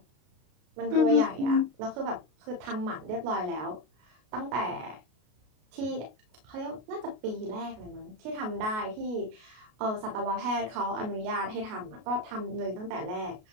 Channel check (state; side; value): late; left; 33 ms